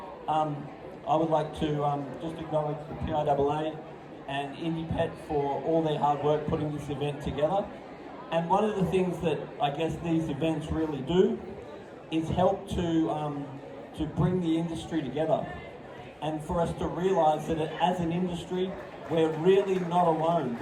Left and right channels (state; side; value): identical; both; correlation 1.00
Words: I would like to just acknowledge the PIAA and IndiePet for all their hard work putting this event together. And one of the things that I guess these events really do is help to bring the industry together, and for us to realise that as an industry, we're really not alone.